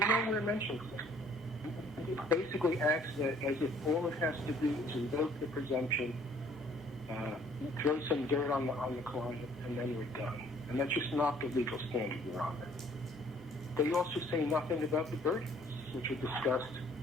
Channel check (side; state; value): both; normal; correlation 0.58